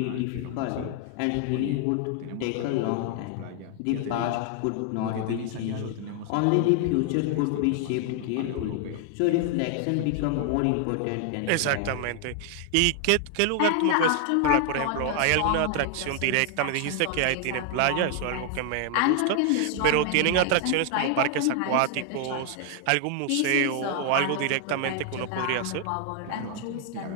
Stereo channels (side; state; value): both; different; correlation 0.00